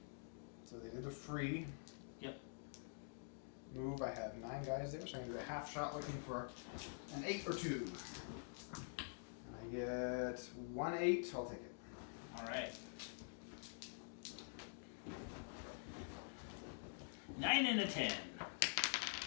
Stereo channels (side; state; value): right; silent; digital silence